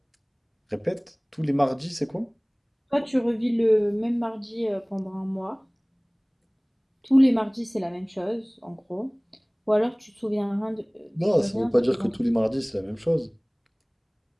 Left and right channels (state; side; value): identical; both; correlation 1.00